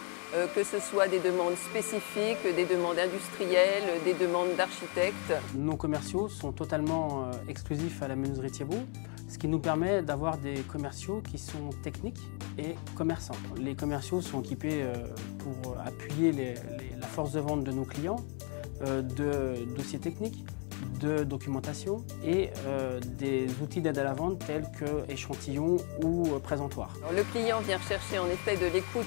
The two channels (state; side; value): quieter; right; 38.3 dB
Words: que ce soit des demandes spécifiques, des demandes industrielles, des demandes d'architectes. Nos commerciaux sont totalement exclusifs à la menuiserie Thiebaud, ce qui nous permet d'avoir des commerciaux qui sont techniques et commerçants. Les commerciaux sont équipés pour appuyer la force de vente de nos clients, de dossiers techniques, de documentation et des outils d'aide à la vente tels que échantillons ou présentoirs. Alors, le client vient chercher en effet de l'écoute